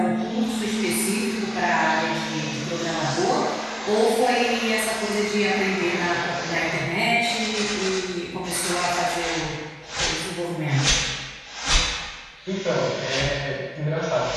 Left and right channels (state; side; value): identical; both; correlation 1.00